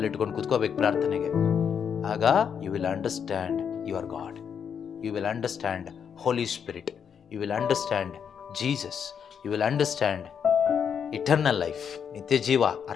ಇಟ್ಕೊಂಡು ಕೂತ್ಕೋಬೇಕು ಪ್ರಾರ್ಥನೆಗೆ. ಆಗ you will understand your God, you will understand holy spirit, you will understand Jesus, you will understand eternal life. ನಿತ್ಯ ಜೀವ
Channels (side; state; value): right; quieter; 7.5 dB